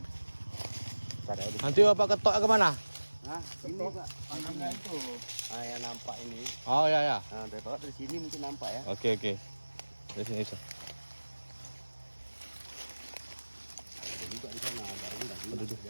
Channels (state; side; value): inverted; both; correlation -1.00